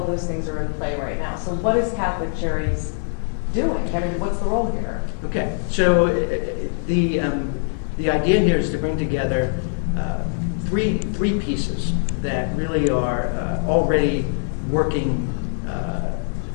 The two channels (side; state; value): right; silent; digital silence